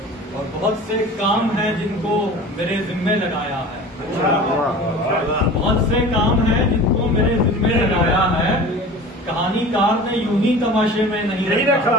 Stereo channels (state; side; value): normal; both; correlation 0.38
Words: اور بہت سے کام ہیں جن کو میرے ذمے لگایا ہے، بہت سے کام ہیں جن کو میرے ذمے لگایا ہے، کہانی کار نے یوں ہی تماشے میں نہیں